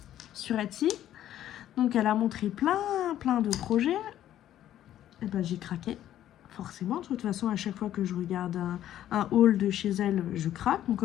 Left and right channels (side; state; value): right; quieter; 12.0 dB